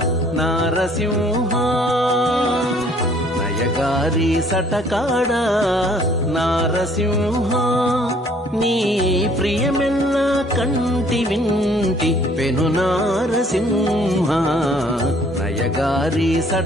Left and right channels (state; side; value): normal; both; correlation 0.59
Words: నారసింహ నయగారి సటకాడ నారసింహ నీ ప్రియమెల్ల కంటి వింటి పెను నారసింహ నయగారి